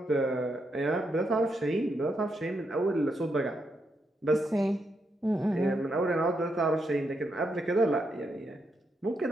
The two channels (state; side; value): normal; both; correlation 0.81